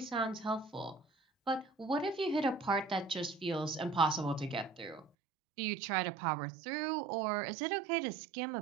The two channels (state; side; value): drops out; left; at 5.1 s